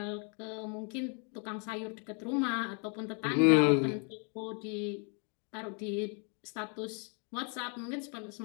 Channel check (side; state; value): right; quieter; 38.6 dB